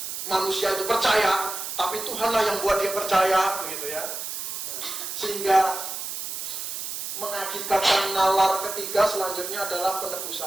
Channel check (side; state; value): right; noise; hiss, 5 dB below the sound